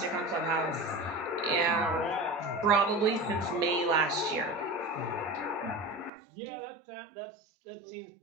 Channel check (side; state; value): left; drops out; at 6.1 s